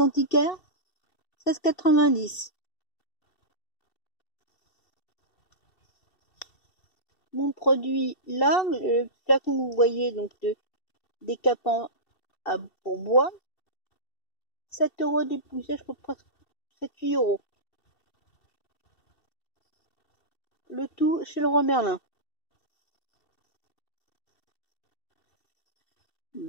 antiquaire, 16,90. Mon produit, là, le flacon que vous voyez, donc de décapant pour bois, 7 € dépouillé, je crois presque 7-8 €. Le tout chez le roi Merlin.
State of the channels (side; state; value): right; late; 2.7 ms